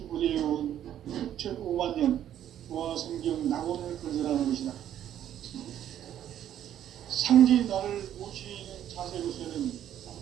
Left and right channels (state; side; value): quieter; left; 10.9 dB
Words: 6,5만 년 조화 성경 낙원을 건설하는 것이다. 상제인 나를 모시는 자세로서는